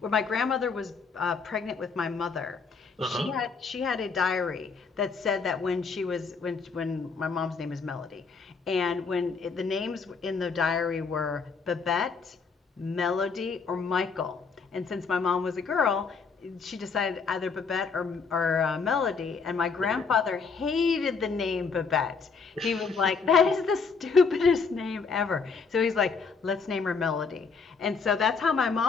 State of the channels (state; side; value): quieter; right; 5.1 dB